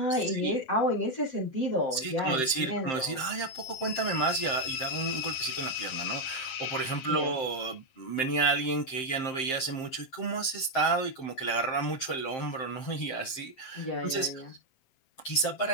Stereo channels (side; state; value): right; late; 7.6 ms